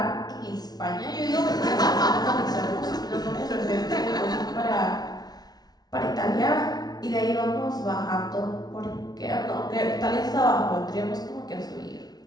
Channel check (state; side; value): late; right; 0.19 ms